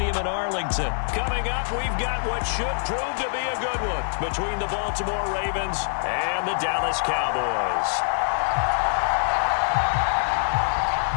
in Arlington. Coming up, we've got what should prove to be a good one between the Baltimore Ravens and the Dallas Cowboys.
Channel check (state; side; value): silent; right; digital silence